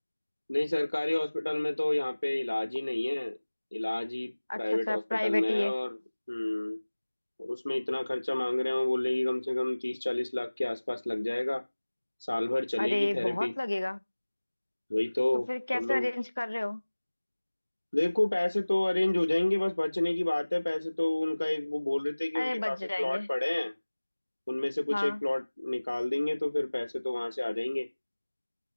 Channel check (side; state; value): both; inverted; correlation -1.00